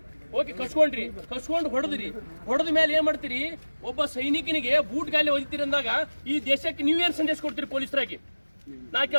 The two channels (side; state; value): both; inverted; correlation -1.00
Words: ಓಕೆ, ಕಸ್ಕೊಂಡು ಹೊಡೆದ ಮೇಲೆ ಏನ್ ಮಾಡ್ತೀರಿ? ಒಬ್ಬ ಸೈನಿಕನಿಗೆ ಬೂಟ್ ಗಾಲಿ ಹೊಡಿತೀರಿ ಅಂದಾಗ ಈ ದೇಶಕ್ಕೆ ನೀವೇನ್ ಸಂದೇಶ ಕೊಡ್ತೀರಿ ಪೊಲೀಸರಾಗಿ? ನಾ